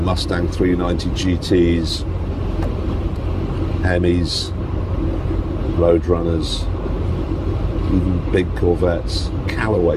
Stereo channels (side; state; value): both; identical; correlation 1.00